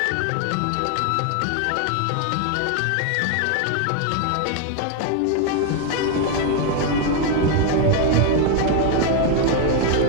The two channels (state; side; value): different; both; correlation 0.01